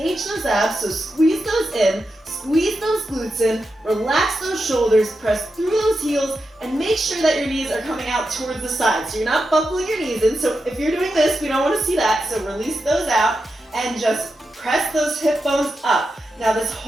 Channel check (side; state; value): both; normal; correlation 0.88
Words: those abs, so squeeze those in, squeeze those glutes in, relax those shoulders, press through those heels, and make sure that your knees are coming out towards the side. So you're not buckling your knees in, so if you're doing this, we don't want to see that, so release those out, and just press those hip bones up. Now this